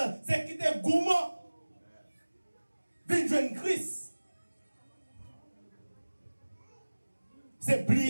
c'est quitter gourmand. Le jeune Christ, c'est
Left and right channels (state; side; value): inverted; both; correlation -1.00